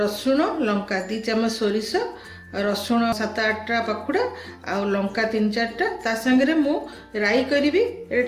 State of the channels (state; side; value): identical; both; correlation 1.00